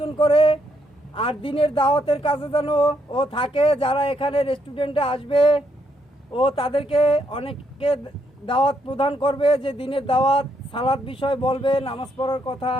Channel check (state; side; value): normal; both; correlation 0.75